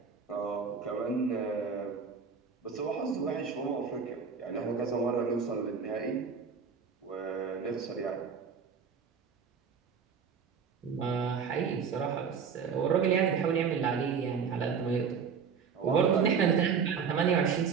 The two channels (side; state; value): left; quieter; 6.2 dB